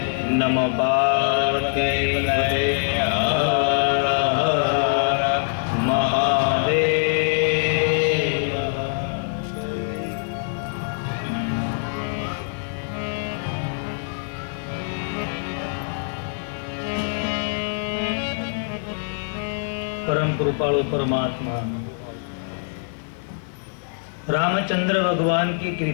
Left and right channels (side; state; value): right; silent; 59 dB below the other